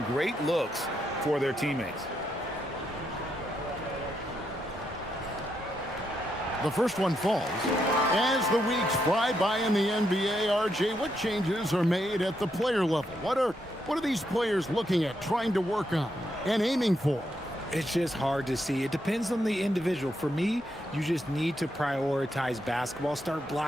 great looks for their teammates. The first one falls. As the weeks fly by in the NBA, RJ, what changes are made at the player level? What are these players looking at, trying to work on, and aiming for? It's just hard to see. It depends on the individual. For me, you just need to prioritize basketball, start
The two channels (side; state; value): both; normal; correlation 0.80